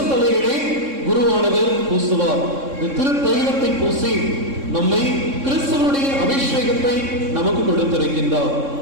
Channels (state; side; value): late; left; 3.6 ms